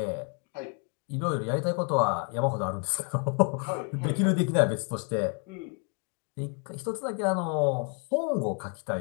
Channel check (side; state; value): right; quieter; 37.1 dB